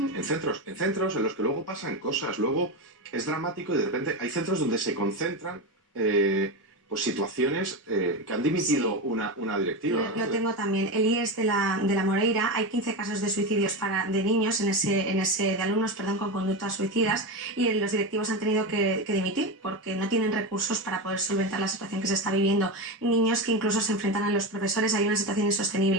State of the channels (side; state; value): both; normal; correlation 0.17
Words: centros en los que luego pasan cosas, luego es dramático y de repente hay centros donde se concentran pues situaciones que han dimitido una directiva. Lo tengo también. El IES de la Moreira, hay 15 casos de suicidios de niños, de alumnos, con conductas suicidas, y los directivos han tenido que dimitir porque no tienen recursos para poder solventar la situación que se está viviendo. Niños que incluso se enfrentan a los profesores, hay una situación